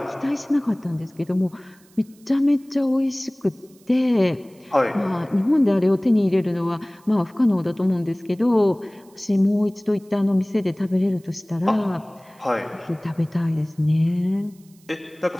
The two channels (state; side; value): noise; right; hiss, 30 dB below the sound